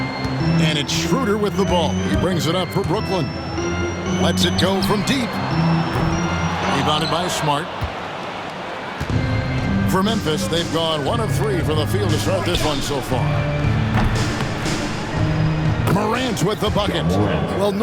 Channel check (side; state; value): both; identical; correlation 1.00